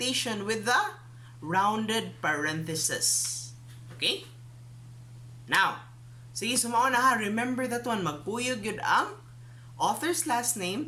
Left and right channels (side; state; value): both; identical; correlation 1.00